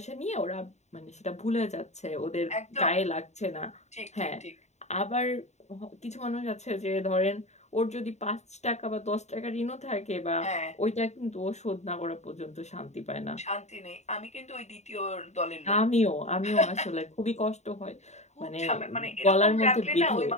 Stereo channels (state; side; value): late; right; 0.33 ms